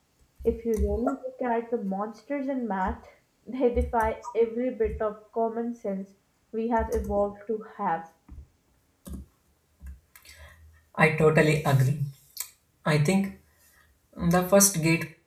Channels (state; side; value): identical; both; correlation 1.00